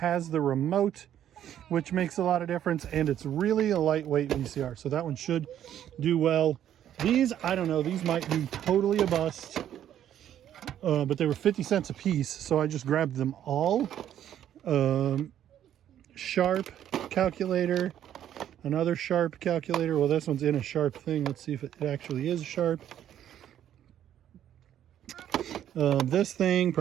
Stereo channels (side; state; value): left; quieter; 10.8 dB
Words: the remote, which makes a lot of difference, and it's really a lightweight VCR, so that one should do well. These, I don't know, these might be totally a bust, but they were 50 cents a piece, so I just grabbed them all. Sharp calculator, another Sharp calculator. Well, this one's in a Sharp thing. Let's see if it actually is Sharp. This thing